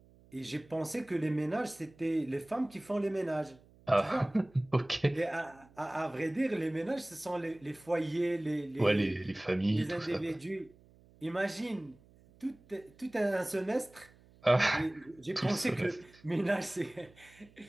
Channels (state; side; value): noise; right; hum, 27 dB below the sound